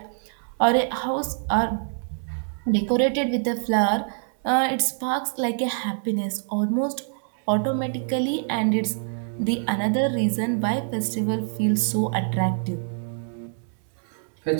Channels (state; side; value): silent; left; digital silence